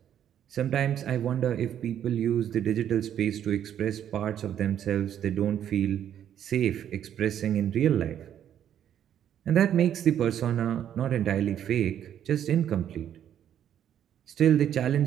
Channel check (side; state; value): left; quieter; 10.0 dB